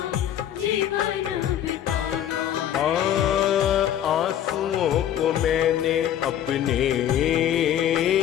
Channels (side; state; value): right; quieter; 10.7 dB